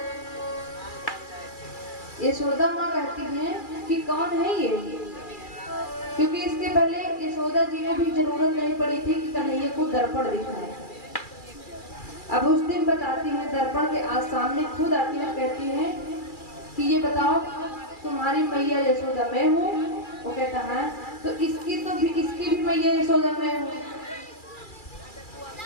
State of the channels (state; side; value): late; right; 2.3 ms